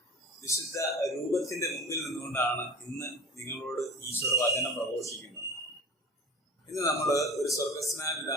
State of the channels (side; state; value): both; normal; correlation 0.37